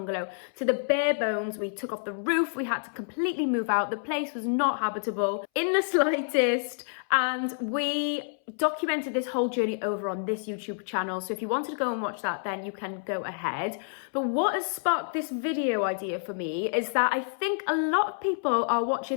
to the bare bones. We took off the roof, we had to completely move out. The place was not habitable in the slightest, and we documented this whole journey over on this YouTube channel. So if you wanted to go and watch that, then you can go ahead. But what has sparked this video idea for me is that I think a lot of people are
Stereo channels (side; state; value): right; silent; 59 dB below the other